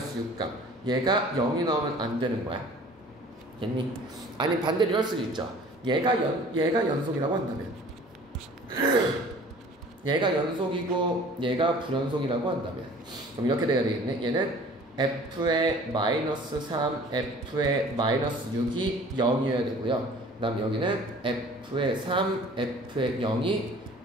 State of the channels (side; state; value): both; normal; correlation 0.48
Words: 6값 얘가 0이 나오면 안 되는 거야. 됐니? 아니 반대로 이럴 수도 있죠. 얘가 연속이라고 한다면 얘가 연속이고 얘가 불연속이라고 한다면 그럼 이렇게 돼야 되겠네. 얘는 f의 마이너스 3, f의 마이너스 6이 0이어야 되고요. 그 다음 여기는 f의 3, f의